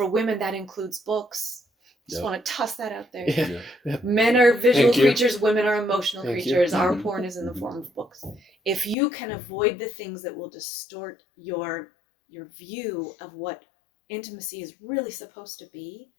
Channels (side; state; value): right; drops out; at 9.0 s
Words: women that includes books. Just want to toss that out there. Yeah. Men are visual Thank you. creatures, women are emotional Thank you. creatures. Our porn is in the form of books. If you can avoid the things that will distort your view of what intimacy is really supposed to be,